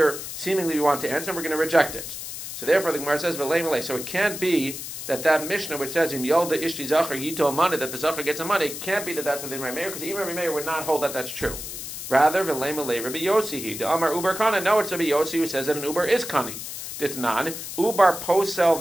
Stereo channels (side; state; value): left; noise; hiss, 8 dB below the sound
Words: seemingly we want to answer, and we're going to reject it. So therefore, the Gemara says, v'lei malei. So it can't be that Mishnah which says, im yolda ishti zachar yito money, that the zachar gets a money, it can't be that that's within Rabbi Meir, because even Rabbi Meir would not hold that that's true. Rather, v'lei malei, Rabbi Yossi he, the Amar uber kana. No, it's Rabbi Yossi who says that an uber is kani. Ditnan, ubar posel